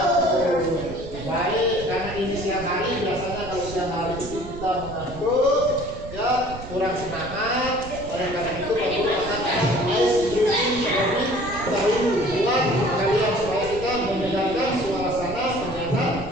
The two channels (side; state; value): right; noise; rumble, 12 dB below the sound